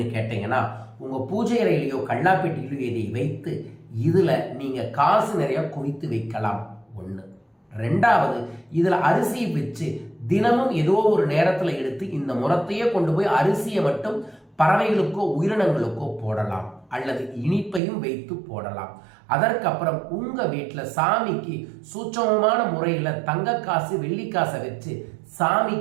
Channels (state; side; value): drops out; left; at 17.8 s